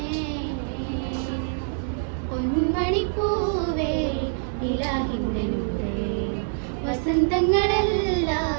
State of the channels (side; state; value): left; silent; 57 dB below the other